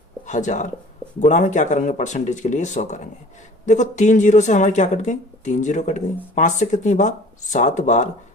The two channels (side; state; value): both; normal; correlation 0.47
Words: गुणा में क्या करेंगे परसेंटेज के लिए 100 करेंगे। देखो 3 जीरो से हमारी क्या कट गई 3 जीरो कट गई, 5 से कितनी बार 7 बार,